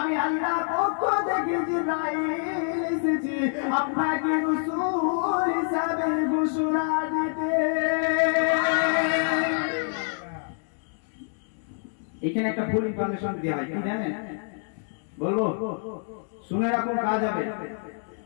আল্লাহর পক্ষ থেকে জিবরাইল এসেছি আপনাকে রাসূল হিসাবে ঘোষণা দিতে। এখানে একটা ফুল ইনফরমেশন দেওয়া হয় কি জানেন বলবো শুনে রাখুন কাজ হবে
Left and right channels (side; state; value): right; silent; 60 dB below the other